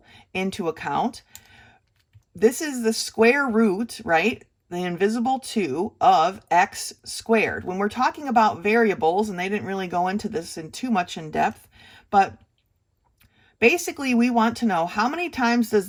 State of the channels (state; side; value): identical; both; correlation 1.00